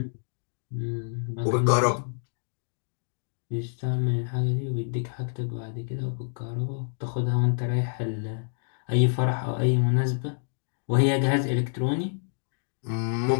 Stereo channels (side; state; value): right; silent; digital silence